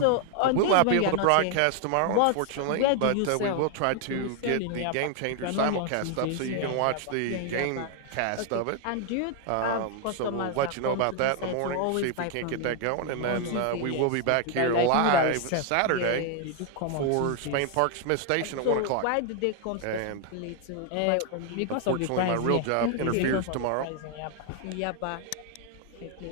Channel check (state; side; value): different; both; correlation 0.00